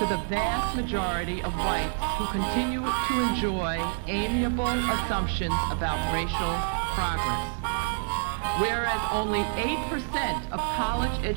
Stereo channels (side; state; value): left; silent; 60 dB below the other